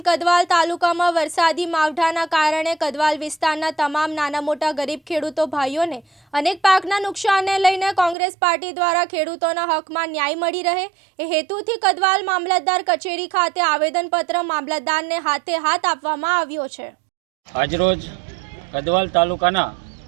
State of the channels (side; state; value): left; drops out; at 8.2 s